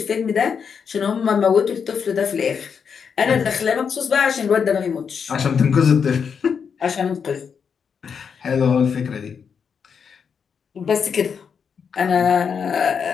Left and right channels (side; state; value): right; quieter; 6.6 dB